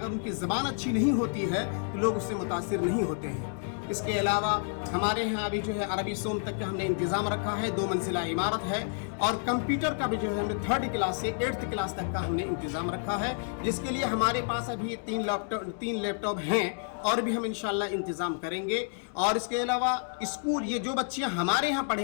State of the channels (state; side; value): silent; right; 58 dB below the other